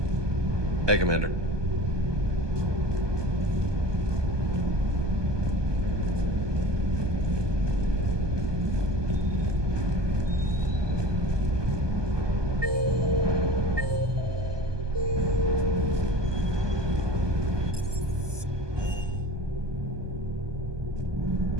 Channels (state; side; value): late; left; 1.2 ms